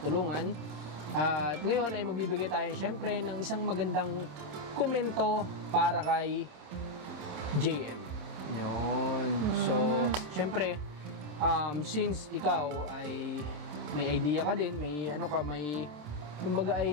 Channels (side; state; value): left; late; 27 ms